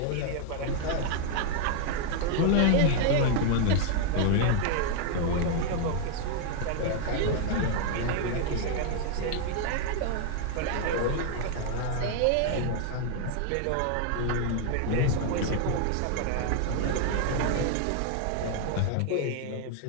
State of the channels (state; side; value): different; both; correlation 0.00